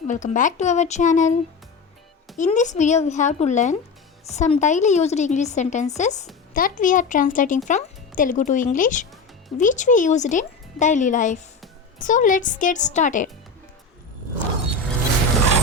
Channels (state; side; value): quieter; right; 4.4 dB